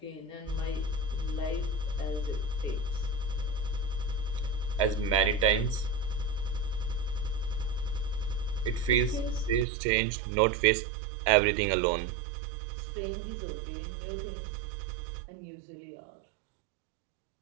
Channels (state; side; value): drops out; left; at 9.7 s